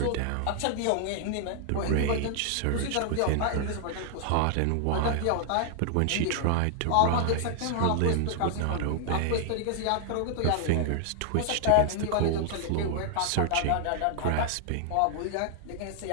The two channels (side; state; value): both; different; correlation 0.00